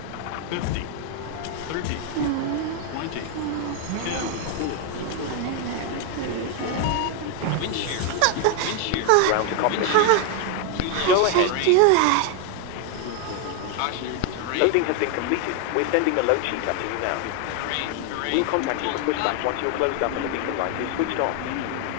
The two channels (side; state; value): both; different; correlation 0.01